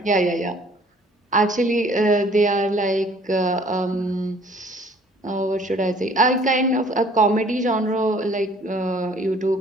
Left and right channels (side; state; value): both; normal; correlation 0.56